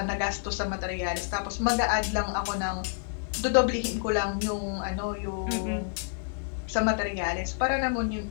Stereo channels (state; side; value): silent; right; digital silence